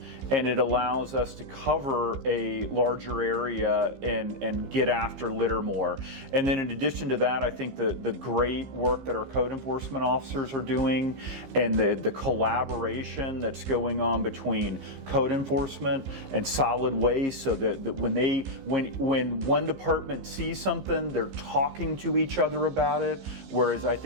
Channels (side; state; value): left; late; 15 ms